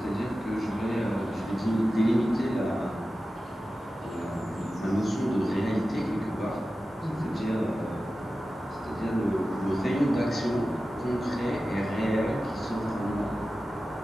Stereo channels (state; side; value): normal; both; correlation 0.94